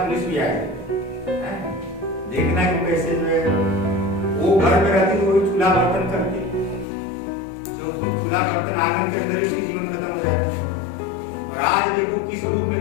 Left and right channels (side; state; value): right; drops out; at 6.9 s